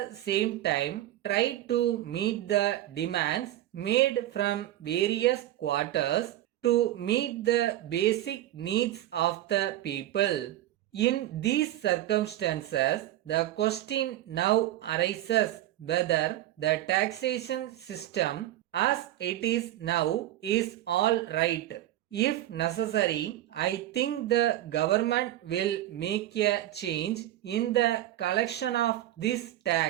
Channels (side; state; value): left; quieter; 14.0 dB